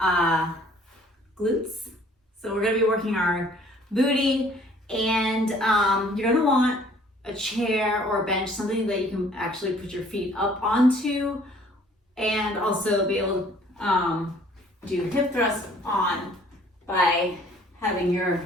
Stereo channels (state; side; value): normal; both; correlation 0.56